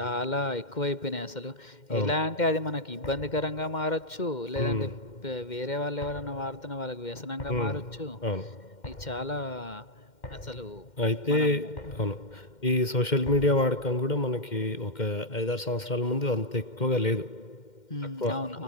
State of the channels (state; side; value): late; right; 2.1 ms